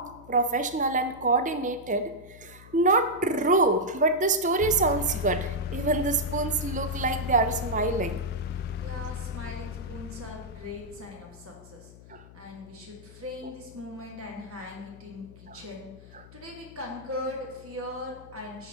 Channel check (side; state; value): left; noise; hum, 20 dB below the sound